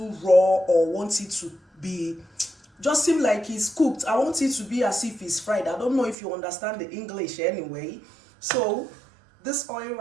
raw or want it to be just seem like it's cooked. I want it to be as if it's fried. I don't know if you understand the English anyway. So this oil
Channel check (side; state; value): left; drops out; at 6.2 s